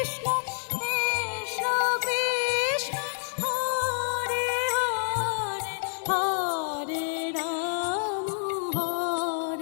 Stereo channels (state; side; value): silent; right; digital silence